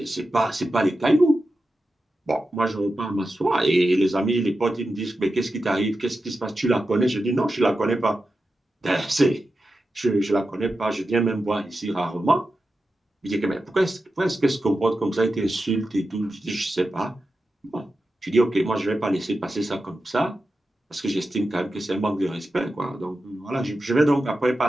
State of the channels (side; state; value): both; normal; correlation 0.91